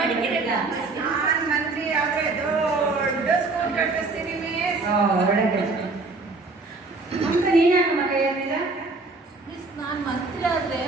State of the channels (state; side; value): quieter; left; 3.6 dB